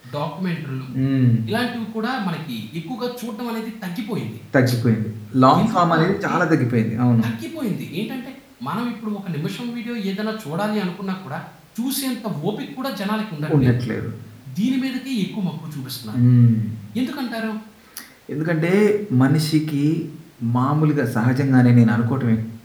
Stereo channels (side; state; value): both; identical; correlation 1.00